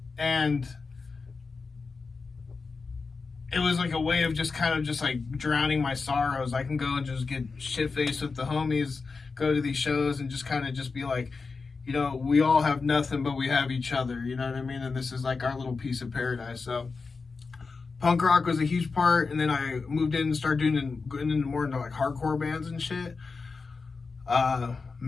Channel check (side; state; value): right; quieter; 4.5 dB